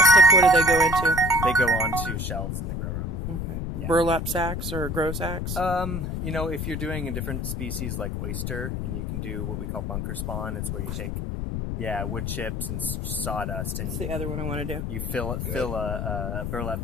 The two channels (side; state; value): left; noise; rumble, 3 dB below the sound